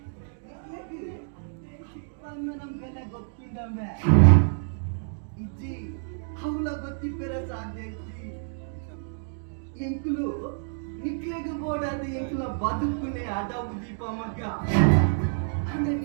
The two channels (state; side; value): silent; left; digital silence